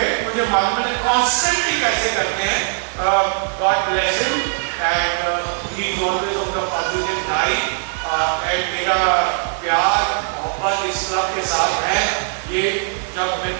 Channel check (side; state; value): left; silent; 60 dB below the other